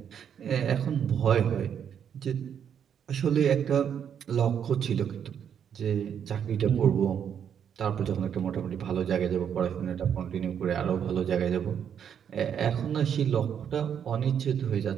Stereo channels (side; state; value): left; quieter; 8.4 dB